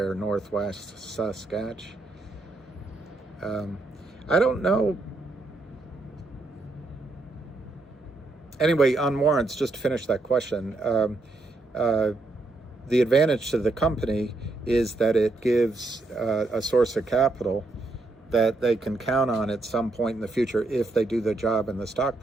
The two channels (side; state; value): left; quieter; 3.2 dB